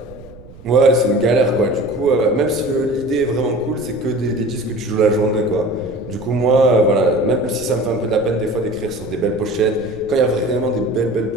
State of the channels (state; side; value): noise; right; rumble, 19 dB below the sound